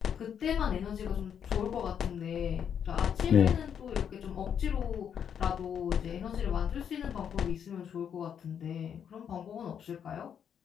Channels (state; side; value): quieter; right; 8.2 dB